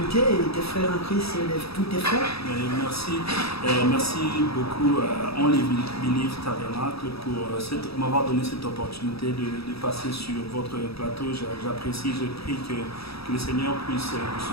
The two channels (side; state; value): right; late; 0.77 ms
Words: et tes frères en Christ, tous tes frères? Merci beaucoup Only Believe Tabernacle pour m'avoir donné cette opportunité de passer sur votre plateau. J'apprécie, je prie que le Seigneur puisse vous